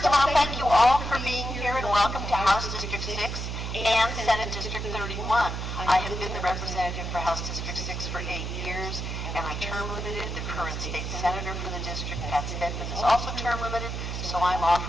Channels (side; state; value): right; noise; hum, 4 dB below the sound